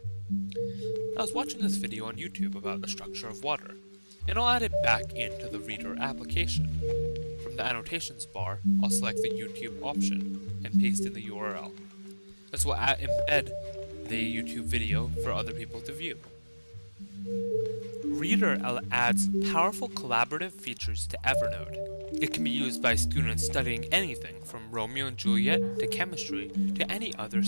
I was watching this video on YouTube about the structure of water, and I'll add it back into the Reader application. From the annotations bar, I'll select the YouTube option and paste in the URL. This will embed the YouTube video for other people to view. Reader adds powerful collaborative features to Evernote. It can be used by students studying anything from Romeo and Juliet to chemistry to any other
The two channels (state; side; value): inverted; both; correlation -1.00